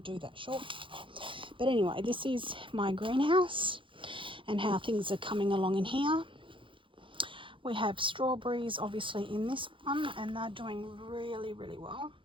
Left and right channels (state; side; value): late; left; 0.25 ms